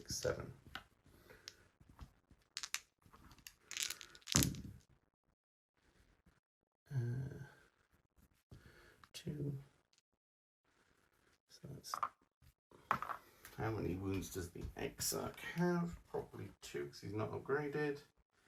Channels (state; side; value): identical; both; correlation 1.00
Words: 7. 2. So that's, how many wounds does the Exarch have? Probably 2 because he's not upgraded.